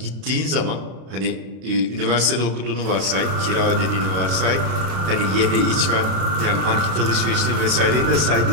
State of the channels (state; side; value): late; left; 32 ms